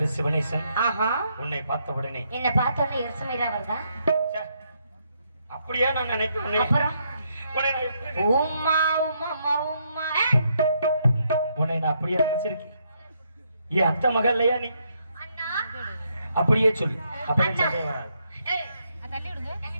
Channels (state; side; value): inverted; both; correlation -0.76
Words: சிவனேசன். ஆஹா. உன்னை பார்த்த உடனே என்ன பார்த்த உடனே எரிச்சமீரா வருதா? அப்படியே நான் நினைக்கிறேன். அப்புறம் உம்மா உம்மா உம்மா உன்னை நான் அப்படியே நினைச்சிருக்கேன். என் அத்தை மகள் இல்லையா நீ? அண்ணா அப்படியே சொல்லு. அப்படியே சண்டை வராது. ஏய் தள்ளி விடுங்க.